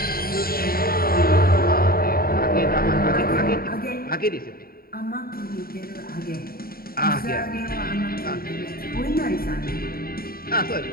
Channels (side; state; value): right; late; 0.43 ms